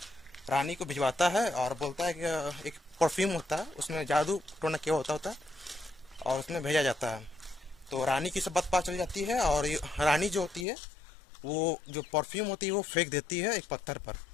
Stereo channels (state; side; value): drops out; right; at 10.7 s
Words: रानी को भिजवाता है और बोलता है कि एक परफ्यूम होता है, उसमें जादू टोना क्या होता है और उसमें भेजा जाता है। तो रानी की सब बात पता चल जाती है और रानी जो होती है वो जो परफ्यूम होती है वो फेंक देती है एक पत्थर पर